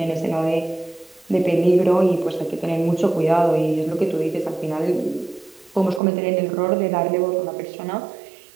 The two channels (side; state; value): left; drops out; at 6.0 s